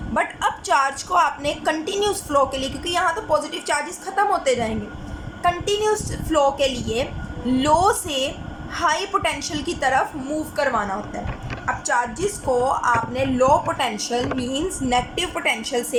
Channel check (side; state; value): both; identical; correlation 1.00